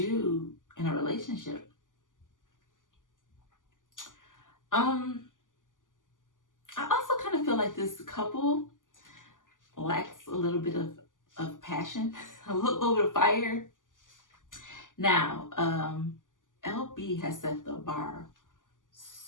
in a relationship. I also kind of feel like this couple lacks a little bit of passion, a little bit of fire. Now, LB has set the bar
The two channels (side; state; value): right; late; 0.88 ms